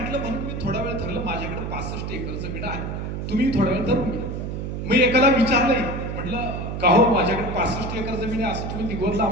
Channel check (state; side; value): noise; right; hum, 4 dB below the sound